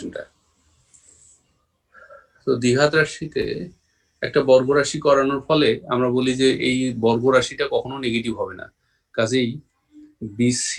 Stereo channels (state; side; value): identical; both; correlation 1.00